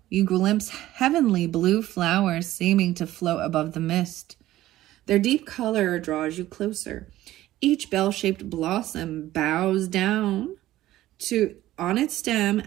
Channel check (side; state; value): left; quieter; 15.0 dB